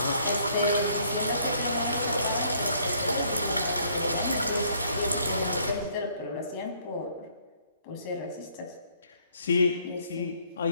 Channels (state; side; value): inverted; both; correlation -0.65